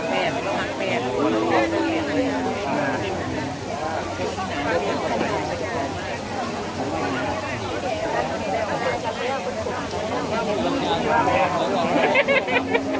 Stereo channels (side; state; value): both; identical; correlation 1.00